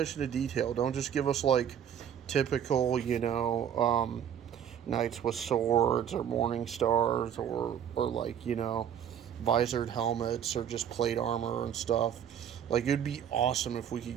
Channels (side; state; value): left; quieter; 9.1 dB